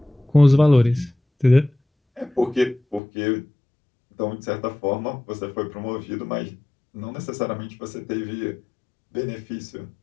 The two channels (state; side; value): drops out; right; at 3.0 s